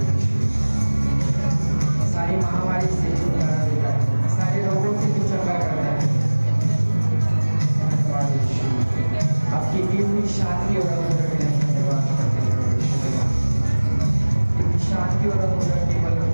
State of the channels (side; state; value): both; inverted; correlation -1.00